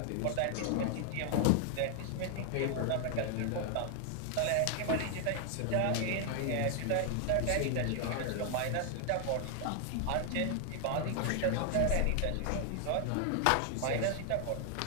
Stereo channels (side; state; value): both; different; correlation 0.00